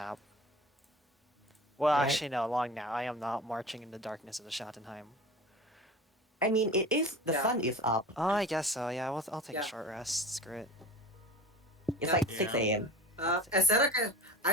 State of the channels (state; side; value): normal; both; correlation 0.36